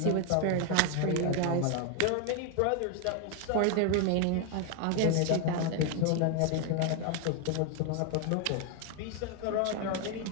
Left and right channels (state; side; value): different; both; correlation 0.01